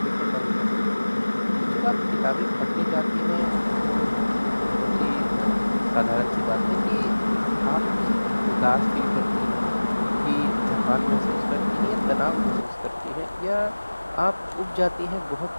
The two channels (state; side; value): inverted; both; correlation -1.00